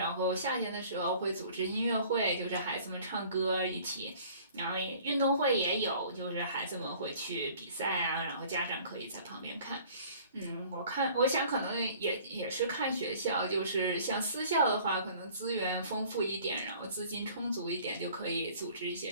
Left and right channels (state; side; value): inverted; both; correlation -0.51